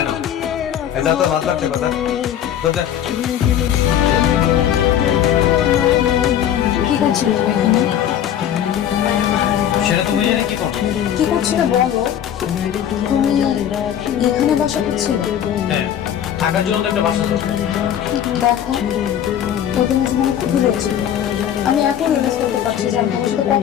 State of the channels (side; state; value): right; quieter; 10.0 dB